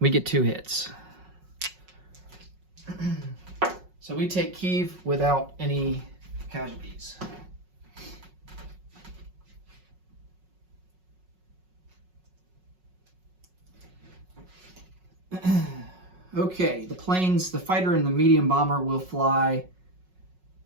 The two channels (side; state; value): left; late; 5.4 ms